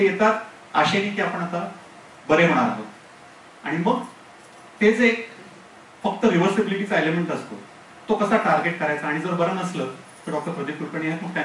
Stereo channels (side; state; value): both; identical; correlation 1.00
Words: येतात आशेने की आपण आता बरे होणार आहोत आणि मग ते जे फक्त रिव्हर्सिबिलिटीचा एलिमेंट असतो तो कसा टार्गेट करायचा आणि जर बरं नसलं तर डॉक्टर प्रदीप कुलकर्णी आहेत, मग